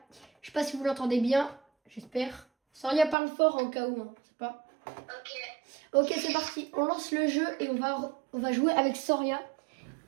Je sais pas si vous l'entendez bien, j'espère. Soria parle fort en cas où, hein, je sais pas. Ok, c'est parti. On lance le jeu et on va jouer avec Soria.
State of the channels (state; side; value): drops out; left; at 3.2 s